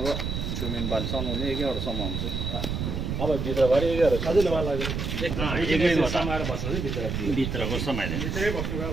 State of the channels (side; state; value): right; noise; rumble, 3 dB below the sound